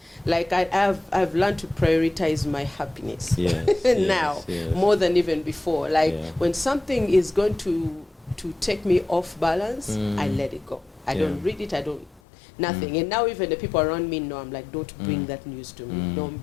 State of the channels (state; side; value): drops out; right; at 12.2 s